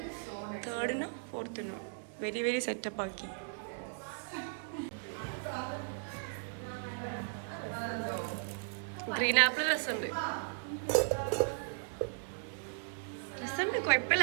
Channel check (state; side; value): silent; left; digital silence